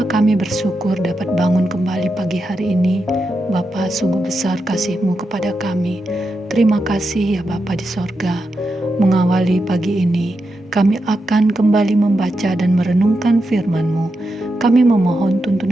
kami bersyukur dapat bangun kembali pagi hari ini. Bapa, sungguh besar kasih-Mu kepada kami. Terima kasih ya Bapa di sorga. Mengawali pagi ini, kami akan kembali membaca dan merenungkan firman-Mu. Kami memohon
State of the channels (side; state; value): both; normal; correlation 0.87